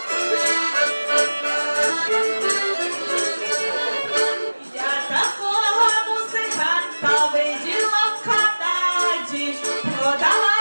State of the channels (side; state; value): both; inverted; correlation -1.00